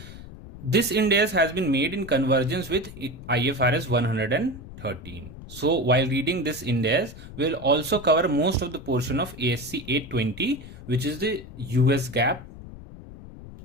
This Ind AS has been made in convergence with IFRS 113. So while reading this Ind AS, we will also cover most of the portion of ASC 820, which is the US GAAP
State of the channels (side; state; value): left; noise; rumble, 15 dB below the sound